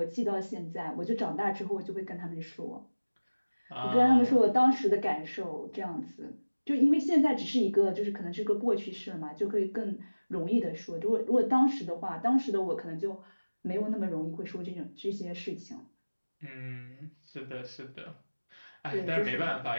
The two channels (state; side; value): inverted; both; correlation -1.00